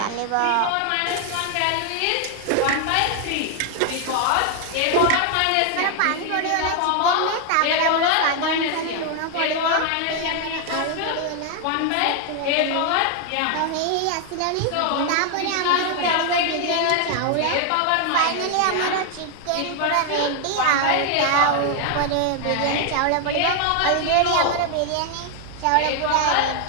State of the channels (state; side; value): different; both; correlation 0.00